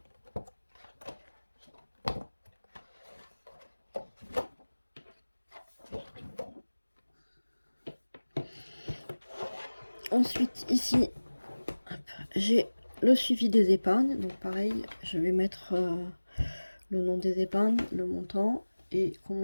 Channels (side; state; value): both; inverted; correlation -1.00